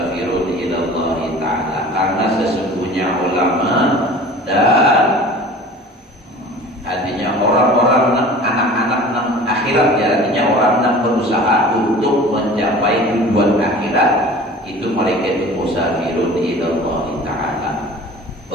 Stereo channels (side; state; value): both; normal; correlation 0.42